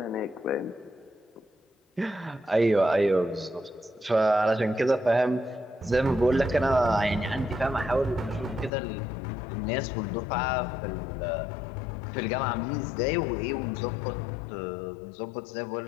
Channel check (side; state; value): right; drops out; at 8.7 s